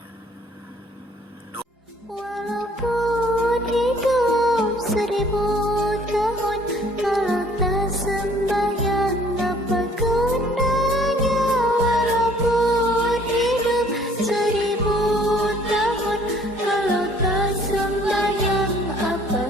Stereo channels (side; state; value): both; normal; correlation 0.57